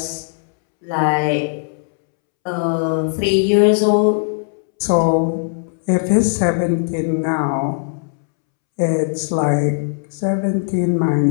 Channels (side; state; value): right; silent; 67 dB below the other